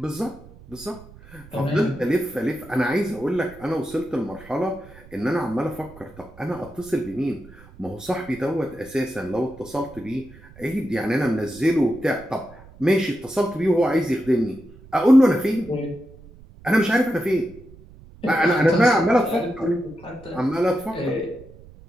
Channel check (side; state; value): right; noise; rumble, 21 dB below the sound